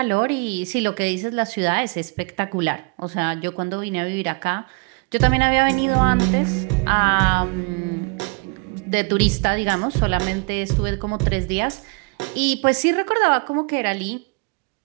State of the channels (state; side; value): quieter; left; 33.8 dB